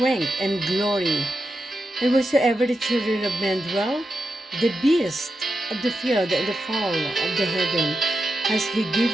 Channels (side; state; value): both; normal; correlation 0.88